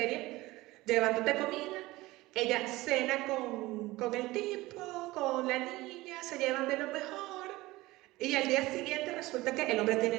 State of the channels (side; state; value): left; quieter; 19.4 dB